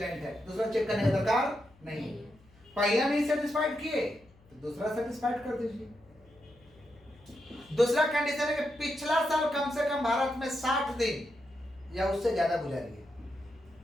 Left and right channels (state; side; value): noise; left; hum, 28 dB below the sound